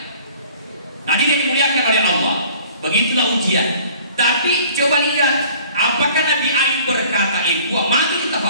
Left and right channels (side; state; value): both; inverted; correlation -0.51